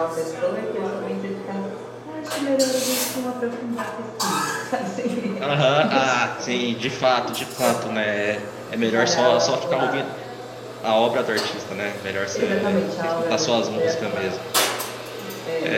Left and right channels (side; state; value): both; identical; correlation 1.00